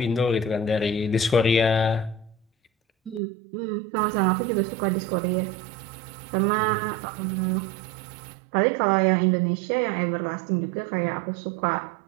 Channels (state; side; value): drops out; left; at 3.2 s